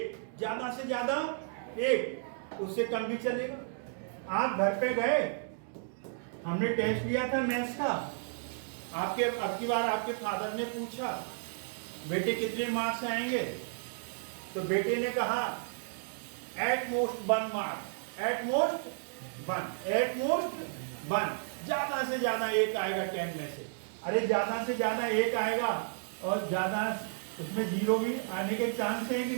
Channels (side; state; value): left; silent; digital silence